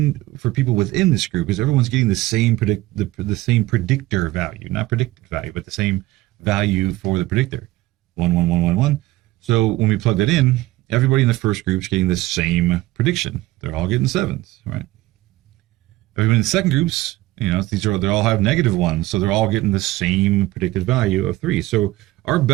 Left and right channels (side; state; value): left; quieter; 17.9 dB